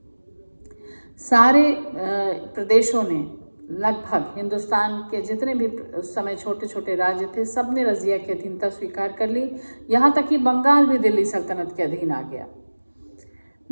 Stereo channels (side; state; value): both; inverted; correlation -1.00